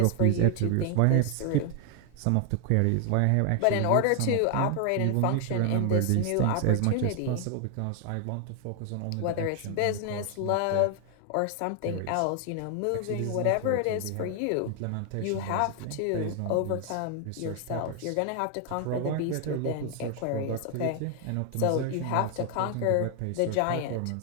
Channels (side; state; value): both; different; correlation 0.00